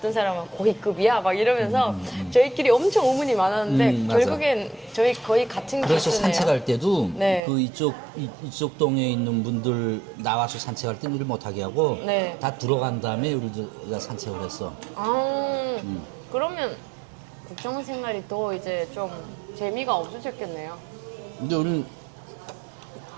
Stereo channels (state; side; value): drops out; left; at 7.4 s